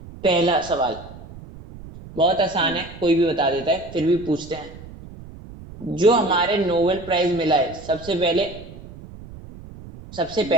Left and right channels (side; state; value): right; noise; rumble, 16 dB below the sound